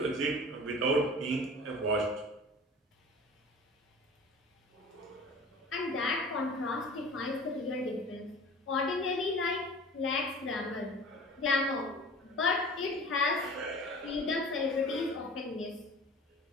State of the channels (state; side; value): normal; both; correlation 0.41